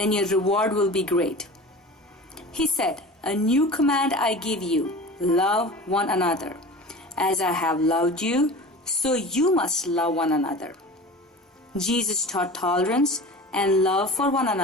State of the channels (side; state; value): both; normal; correlation 0.36